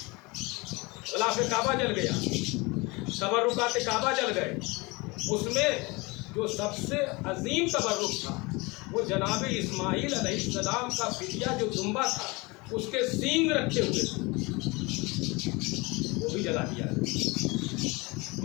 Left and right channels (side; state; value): right; quieter; 25.2 dB